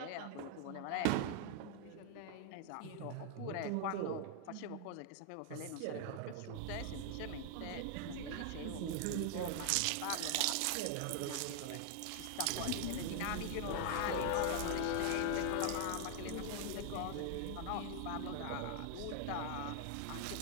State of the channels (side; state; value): both; different; correlation 0.00